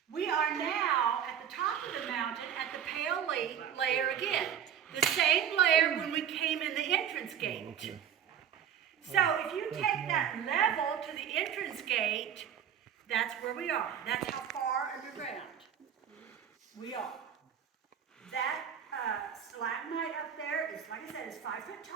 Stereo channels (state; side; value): quieter; left; 8.7 dB